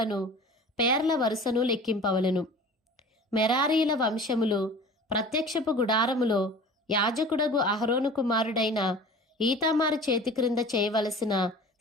పేర్ల వరుసను లెక్కింపవలెను. మెరారీల వంశములు ప్రత్యక్షపు గుడారములో యాజకుడగు అహరోను కుమారుడైన ఈతామారు చేతి క్రింద చేయవలసిన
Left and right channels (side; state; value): both; normal; correlation 0.41